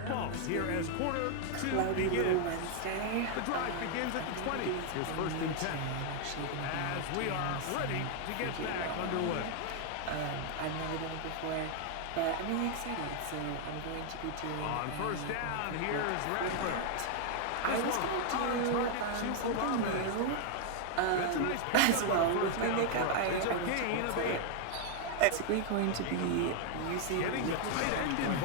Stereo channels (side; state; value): both; different; correlation 0.00